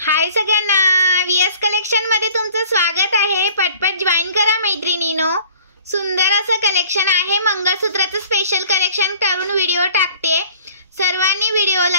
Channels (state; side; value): inverted; both; correlation -0.52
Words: हाय सगळ्यांना, VS collection मध्ये तुमचं स्वागत आहे। पटपट जॉइन करा मैत्रिणींनो। सुंदर असं कलेक्शन आहे, मंगळसूत्राचं स्पेशल कलेक्शन करून व्हिडिओ टाकते। सर्वांनी